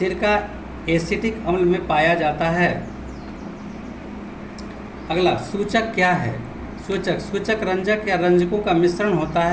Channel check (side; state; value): both; identical; correlation 1.00